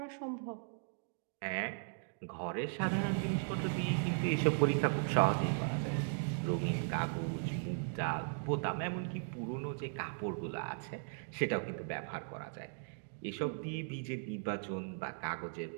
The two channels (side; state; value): left; silent; digital silence